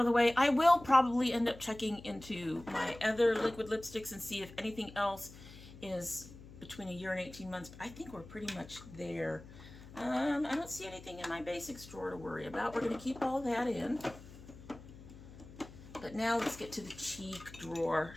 of the way, I will probably end up checking into my other liquid lipsticks and see if anything else is between 1 year and 18 months. But I think we're pretty much there. I don't see anything in my basics drawer to worry about. We're going to keep all that in. But now let's get to the cheek drawer.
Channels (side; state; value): left; noise; hum, 17 dB below the sound